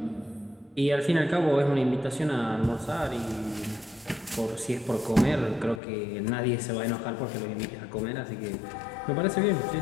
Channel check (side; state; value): right; drops out; at 5.8 s